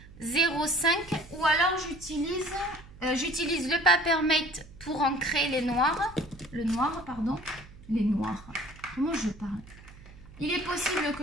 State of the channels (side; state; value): right; noise; hum, 20 dB below the sound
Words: Ou alors, j'utilise le Papermate pour ancrer les noirs. Les noirs. Comment je parle? Il est possible